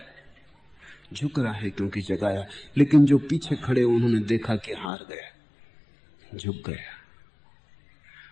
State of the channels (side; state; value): right; drops out; at 4.9 s